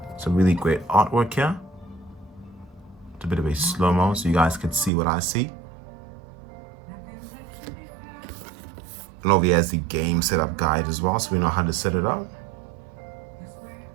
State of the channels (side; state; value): left; drops out; at 4.9 s